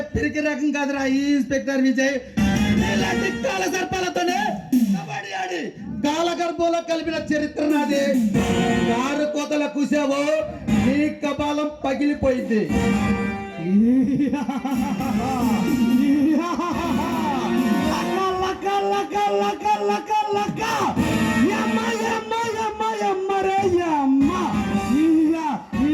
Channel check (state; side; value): identical; both; correlation 1.00